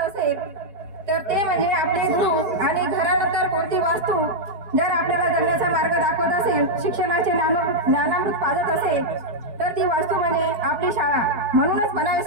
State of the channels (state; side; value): late; left; 4.7 ms